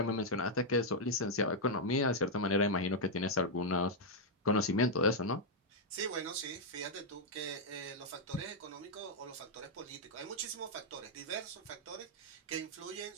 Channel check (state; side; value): normal; both; correlation -0.03